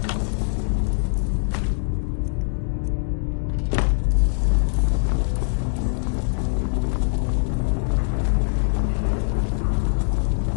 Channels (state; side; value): silent; right; digital silence